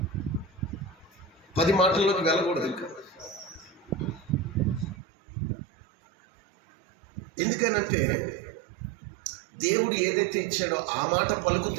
10 మాటల్లోకి వెళ్ళకూడదు. ఇంకా ఎందుకనంటే దేవుడు ఏదైతే ఇచ్చాడో ఆ మాట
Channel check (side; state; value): left; drops out; at 5.0 s